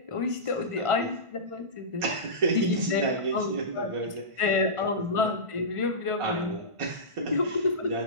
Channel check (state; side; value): late; left; 1.5 ms